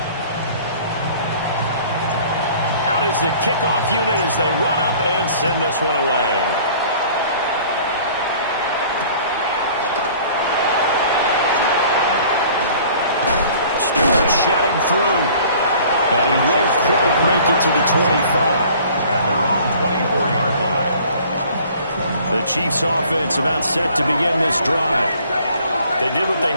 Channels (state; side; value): inverted; both; correlation -0.51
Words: Out is the kickoff unit as they run up and send this one away. Stewart shedding through. And he won't quite make it to the 25. At their own 24-yard line. The Chiefs offense about set to begin this drive. They did what they